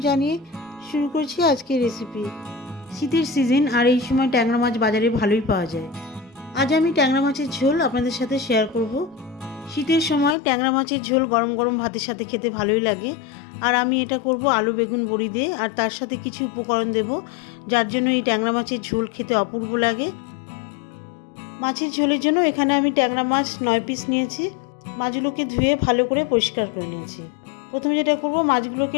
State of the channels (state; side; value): drops out; right; at 10.4 s